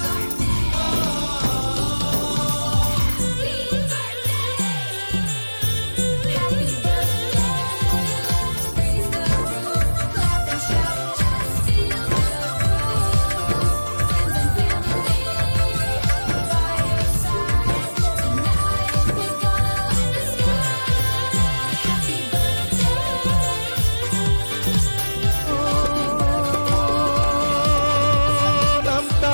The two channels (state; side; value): inverted; both; correlation -1.00